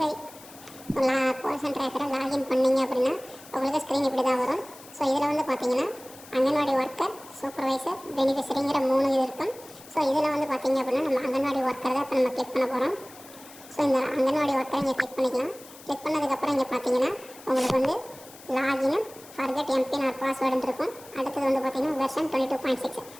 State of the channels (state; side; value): noise; left; hiss, 20 dB below the sound